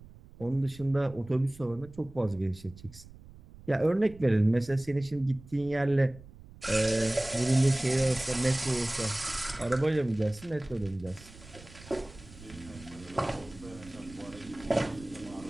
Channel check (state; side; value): noise; right; rumble, 20 dB below the sound